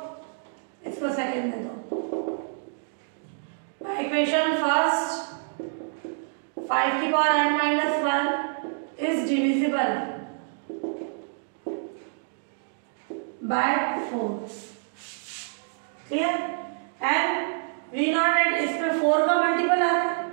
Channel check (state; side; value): silent; left; digital silence